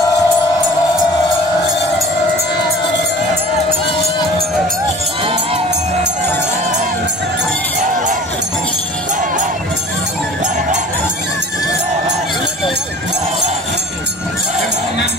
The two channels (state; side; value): normal; both; correlation 0.44